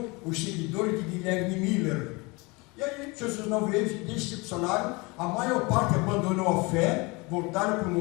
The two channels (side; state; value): right; quieter; 26.2 dB